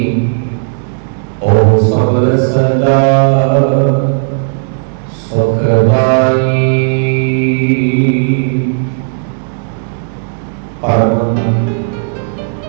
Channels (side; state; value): left; silent; digital silence